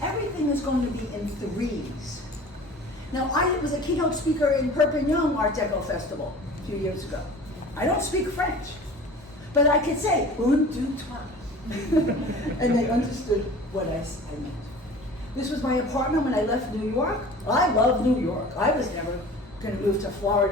is going to be in threes. Now, I was a keynote speaker in Perpignan Art Deco Festival a few years ago. I don't speak French, but I could say, un, deux, trois. And they understood what I meant. This was my apartment when I left New York. I love New York. I was never going to move to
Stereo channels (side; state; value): both; normal; correlation 0.42